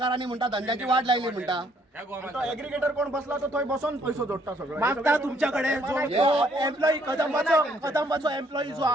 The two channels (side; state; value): both; normal; correlation 0.66